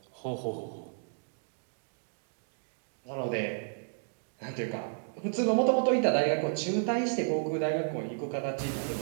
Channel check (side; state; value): left; silent; digital silence